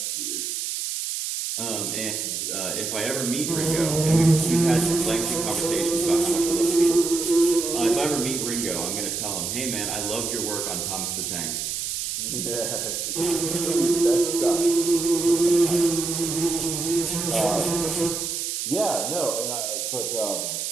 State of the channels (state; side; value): noise; right; hiss, 3 dB below the sound